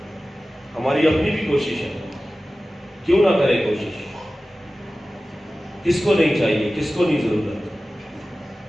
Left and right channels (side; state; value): both; normal; correlation 0.96